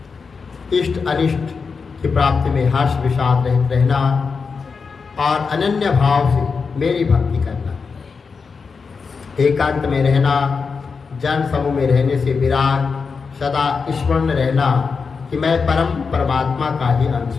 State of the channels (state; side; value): quieter; right; 5.2 dB